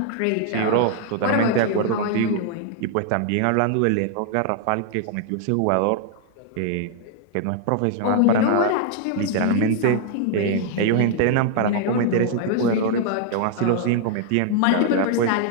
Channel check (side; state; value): both; different; correlation 0.00